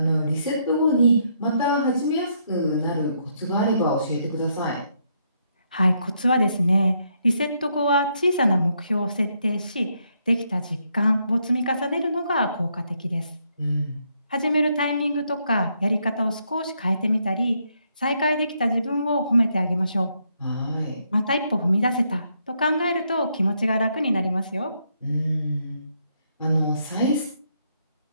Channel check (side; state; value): both; inverted; correlation -0.75